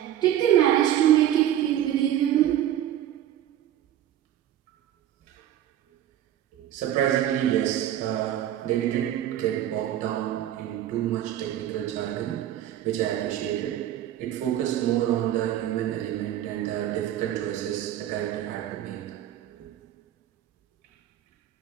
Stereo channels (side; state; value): left; quieter; 11.8 dB